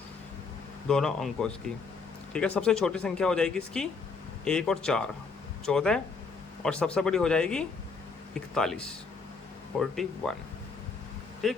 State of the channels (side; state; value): right; quieter; 4.7 dB